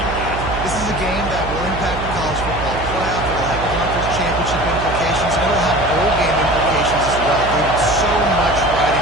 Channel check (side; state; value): right; noise; hum, 7 dB below the sound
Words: guys. This is a game that will impact the college football playoff. It'll have conference championship implications, and it'll have bowl game implications as well. David, so much